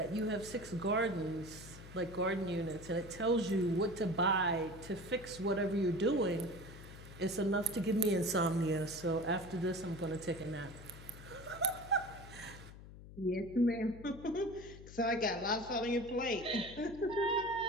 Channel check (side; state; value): left; noise; hum, 16 dB below the sound